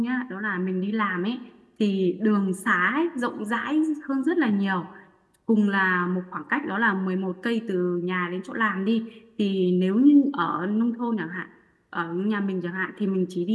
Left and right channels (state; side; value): identical; both; correlation 1.00